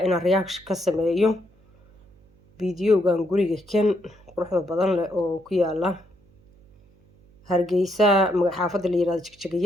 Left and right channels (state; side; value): noise; right; hum, 30 dB below the sound